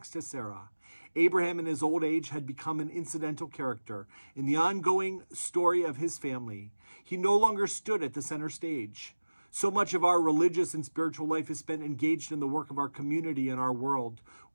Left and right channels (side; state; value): both; inverted; correlation -1.00